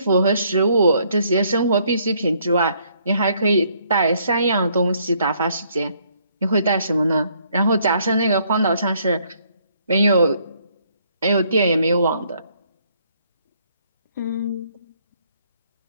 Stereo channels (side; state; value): both; inverted; correlation -0.67